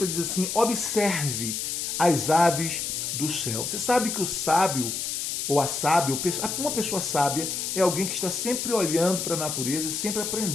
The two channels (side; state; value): left; noise; hiss, 3 dB below the sound